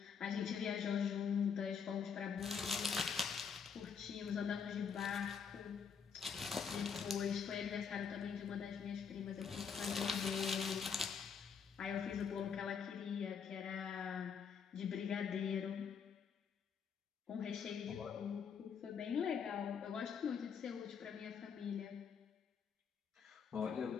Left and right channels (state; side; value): quieter; right; 6.6 dB